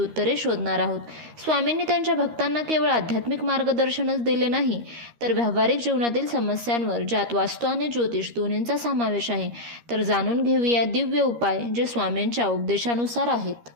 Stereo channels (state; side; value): late; left; 13 ms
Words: शोधणार आहोत। स्वामींनी त्यांच्या भक्तांना केवळ आध्यात्मिक मार्गदर्शनच दिले नाही, तर व्यावहारिक जीवनातील समस्यांवर, ज्यात वास्तू आणि ज्योतिष दोन्हींचा समावेश आहे, तर जाणून घेऊया दिव्य उपाय जे स्वामींच्या उपदेशानुसार आहेत।